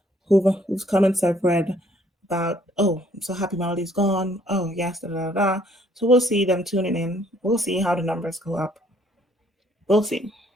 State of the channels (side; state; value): both; normal; correlation 0.63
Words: whose comments I've read about, oh, I'm so happy Melody's gone. Oh, yes, da da da. So we'll see them tuning in. We'll see how the numbers go up. We'll see,